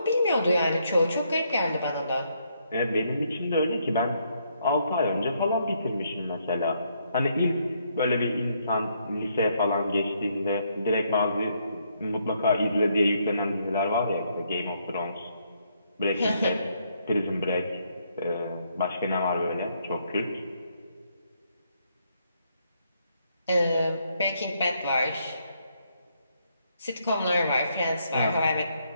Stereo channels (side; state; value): both; inverted; correlation -0.74